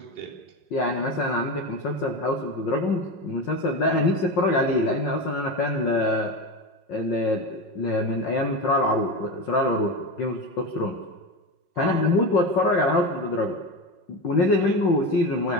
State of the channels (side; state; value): right; late; 5.5 ms